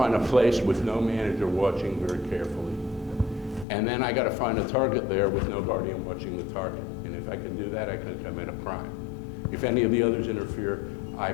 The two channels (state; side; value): drops out; right; at 3.7 s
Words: a place with no manager watching very carefully. And then I got to find a target there with no guardian watching the target. And if I can do that, I can commit a crime. If any of the others interfere, I